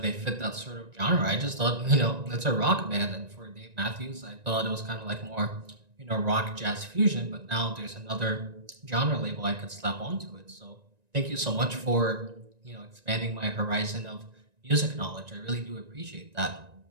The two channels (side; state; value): left; late; 1.9 ms